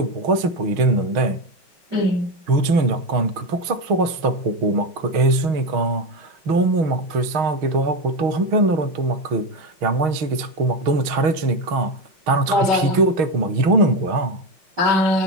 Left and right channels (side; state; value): left; late; 6.3 ms